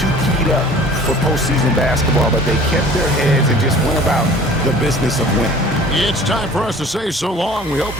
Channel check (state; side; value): normal; both; correlation 0.47